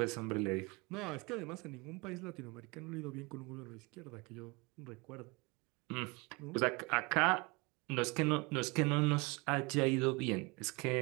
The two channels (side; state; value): left; quieter; 27.2 dB